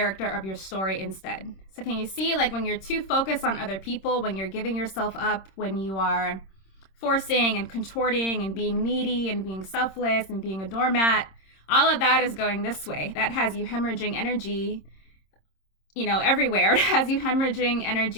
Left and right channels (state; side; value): late; right; 26 ms